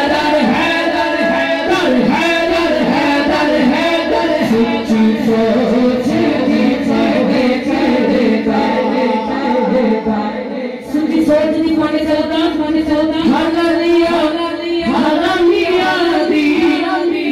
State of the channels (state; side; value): identical; both; correlation 1.00